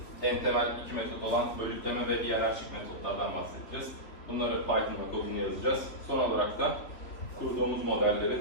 en temel iki metot olan bölütleme ve hiyerarşik metotlardan bahsedeceğiz. Bunları Python'da kodunu yazacağız. Son olarak da kurduğumuz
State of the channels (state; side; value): late; right; 3.6 ms